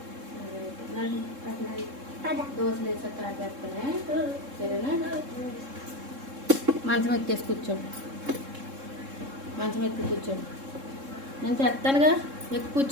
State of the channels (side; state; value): left; late; 3.7 ms